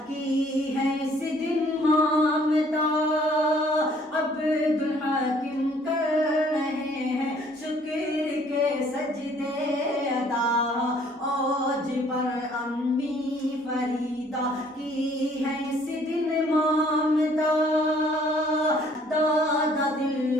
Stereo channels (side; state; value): both; normal; correlation 0.60